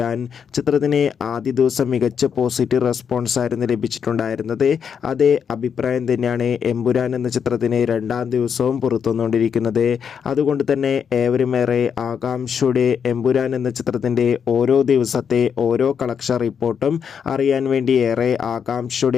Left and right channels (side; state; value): right; quieter; 7.2 dB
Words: ചിത്രത്തിന് ആദ്യ ദിവസം മികച്ച പോസിറ്റീവ് റെസ്പോൺസ് ആയിരുന്നു ലഭിച്ചിട്ടുണ്ടായിരുന്നത്. അതേ അഭിപ്രായം തന്നെയാണ് എമ്പുരാൻ എന്ന ചിത്രത്തിന് രണ്ടാം ദിവസവും പുറത്തുവന്നുകൊണ്ടിരിക്കുന്നത്. അതുകൊണ്ട് തന്നെ ഏവരുമേറെ ആകാംക്ഷയോടെ എമ്പുരാൻ എന്ന ചിത്രത്തിൻ്റെ ഓരോ ദിവസത്തെ ഓരോ കളക്ഷൻ റിപ്പോർട്ടും അറിയാൻ വേണ്ടി ഏറെ